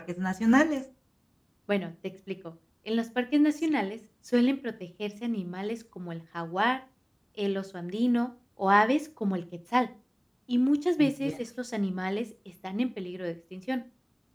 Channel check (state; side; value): identical; both; correlation 1.00